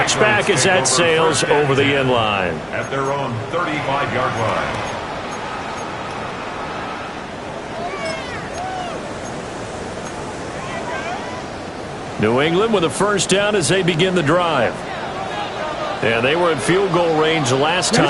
as that sails over the end line. At their own 35-yard line. New England with a 1st down as they begin the drive. And they were in field goal range last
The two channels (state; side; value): identical; both; correlation 1.00